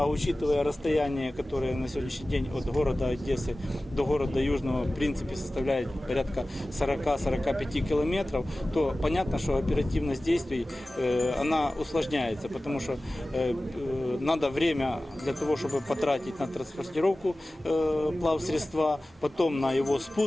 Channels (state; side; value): normal; both; correlation 0.97